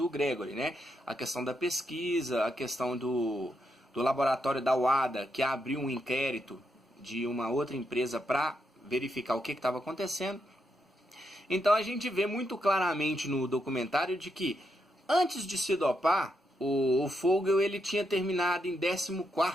Gregory, né? A questão da pesquisa, a questão do laboratório da WADA, que abriu um inquérito de uma outra empresa para verificar o que estava acontecendo. Então a gente vê muito claramente no documentário de que antes de se dopar, o Fogel ele tinha terminado em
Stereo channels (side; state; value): both; normal; correlation 0.81